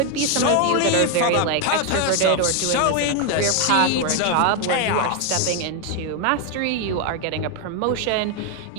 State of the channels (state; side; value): different; both; correlation 0.01